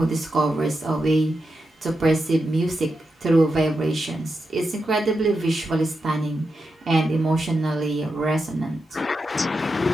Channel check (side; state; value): both; normal; correlation 0.88